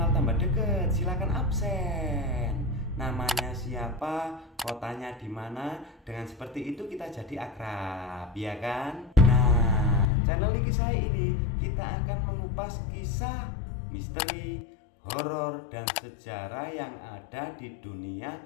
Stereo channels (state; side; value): drops out; right; at 10.1 s